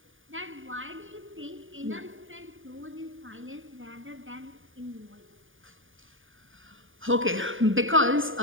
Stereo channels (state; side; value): late; left; 0.58 ms